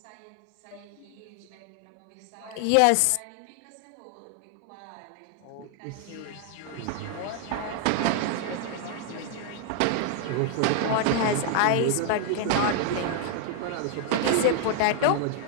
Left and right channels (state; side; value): different; both; correlation 0.00